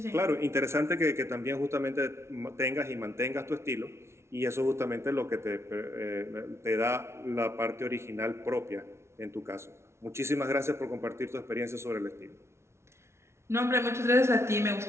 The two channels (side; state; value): left; late; 0.13 ms